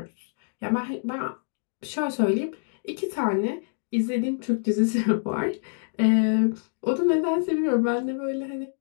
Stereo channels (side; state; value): right; silent; digital silence